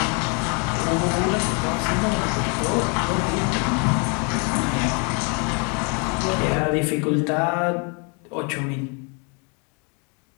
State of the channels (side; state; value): right; quieter; 35.6 dB